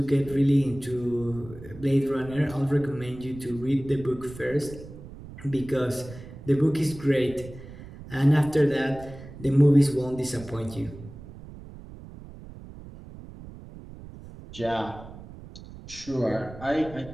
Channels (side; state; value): right; noise; rumble, 15 dB below the sound